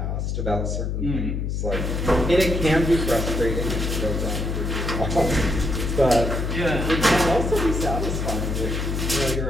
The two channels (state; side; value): noise; left; hum, 1 dB below the sound